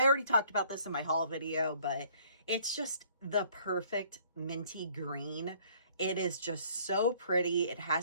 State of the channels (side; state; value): both; inverted; correlation -0.59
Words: talked about this in my haul video, but It's just the perfect minty green. It is just so pretty. It